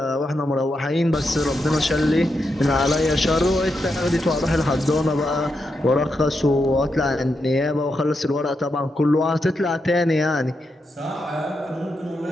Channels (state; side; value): normal; both; correlation 0.85